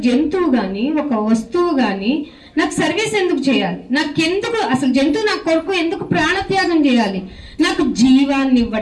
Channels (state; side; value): identical; both; correlation 1.00